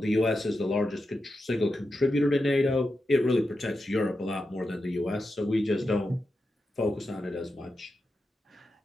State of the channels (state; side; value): normal; both; correlation 0.89